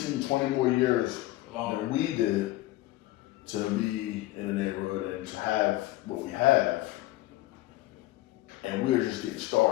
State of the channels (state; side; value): quieter; right; 17.1 dB